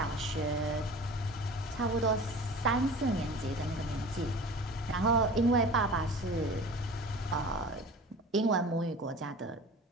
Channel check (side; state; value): both; normal; correlation 0.39